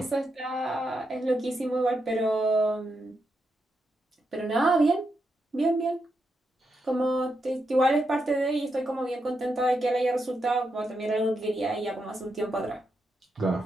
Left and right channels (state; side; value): normal; both; correlation 0.84